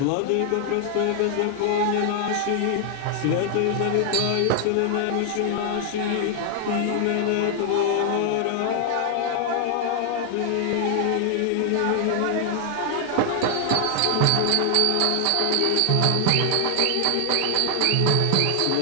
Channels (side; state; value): both; different; correlation 0.00